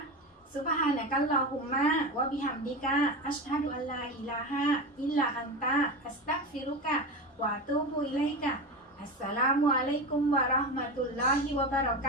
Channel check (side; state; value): both; normal; correlation 0.22